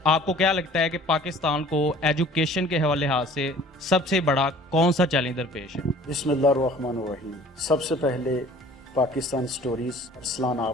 आपको क्या लगता है कि पाकिस्तान को एजुकेशन के हवाले से सबसे बड़ा कौन सा चैलेंज दरपेश है? बिस्मिल्लाहिर्रहमानिर्रहीम। सबसे पहले पाकिस्तान स्टोरीज अरसलान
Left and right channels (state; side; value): normal; both; correlation 0.49